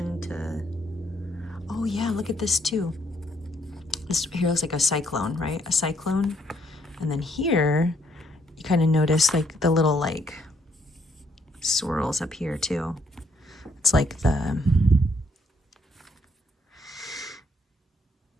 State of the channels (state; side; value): normal; both; correlation 0.71